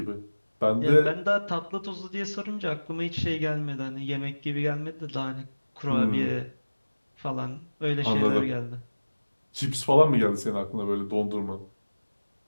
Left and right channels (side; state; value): both; inverted; correlation -1.00